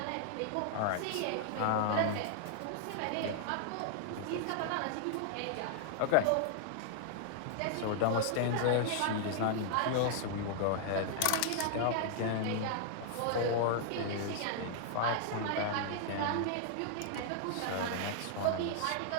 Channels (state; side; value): different; both; correlation 0.00